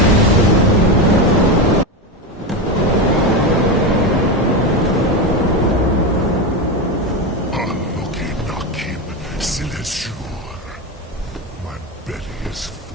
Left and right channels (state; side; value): normal; both; correlation 0.16